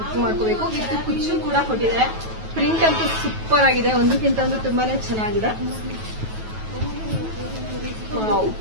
ಬುಕ್ ಮಾಡ್ಕೋಬೇಕು. ವಿತ್ ಕುಚ್ಚು ಕೂಡ ಕೊಟ್ಟಿದ್ದಾರೆ. ಪ್ರಿಂಟ್ ಅಂತೂ ಸೂಪರ್ ಆಗಿದೆ. ಒಂದಕ್ಕಿಂತ ಒಂದು ತುಂಬಾನೇ ಚೆನ್ನಾಗಿದೆ.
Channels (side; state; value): left; late; 9.2 ms